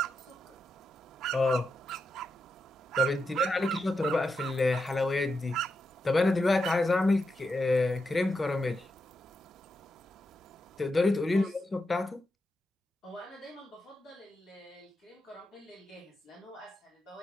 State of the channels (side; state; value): both; normal; correlation 0.86